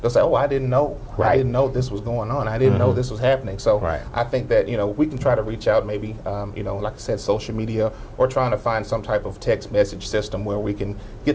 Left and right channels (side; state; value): both; identical; correlation 1.00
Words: they'll say, oh, I didn't know. I didn't know this was going on. I didn't know this was happening. So I think that, you know, we can try to reach out maybe, you know, like I said, social media, or trying to find some type of text message system where we can